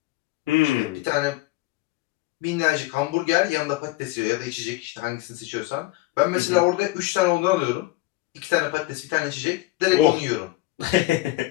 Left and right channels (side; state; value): right; quieter; 18.4 dB